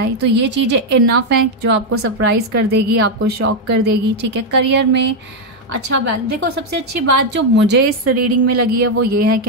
तो ये चीज़ें इनफ हैं जो आपको सरप्राइज़ कर देगी, आपको शॉक कर देगी, ठीक है। करियर में अच्छा बैलेंस, देखो सबसे अच्छी बात जो मुझे इस रीडिंग में लगी है वो ये है कि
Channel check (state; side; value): normal; both; correlation 0.02